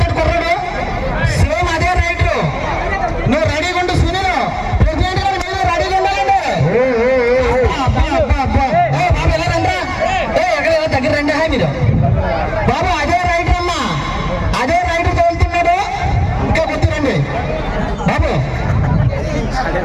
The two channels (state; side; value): identical; both; correlation 1.00